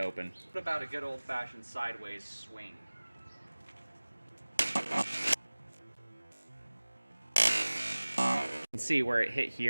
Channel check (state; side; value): inverted; both; correlation -1.00